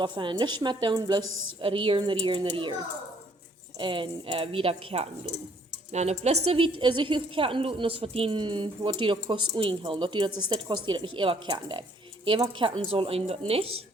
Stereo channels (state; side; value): normal; both; correlation 0.63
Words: je niet meer doen, bloß rieren. En wieder kerten doen. Nou, de beste wie zich heel kerten doen, is wat die dat kost uinhalen. Dat die dat is dit kost die dat niet eeuwig kerten deed. Eeuwig kerten soll een dat niet,